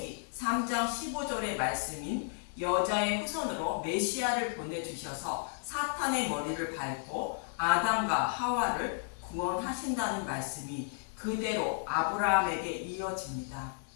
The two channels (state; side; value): silent; right; digital silence